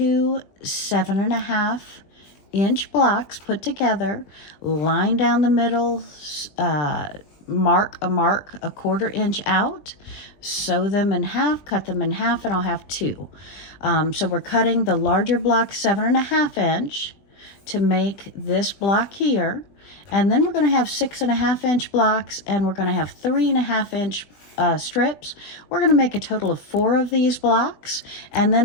7.5-inch blocks put together, line down the middle, mark a 1/4 inch out, sew them in half, cut them in half, and I'll have 2. So we're cutting the larger block 7.5-inch to make this block here, and then we're going to have 6.5-inch blocks, and we're going to have 3.5-inch strips. We're going to make a total of 4 of these blocks, and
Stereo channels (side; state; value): right; late; 20 ms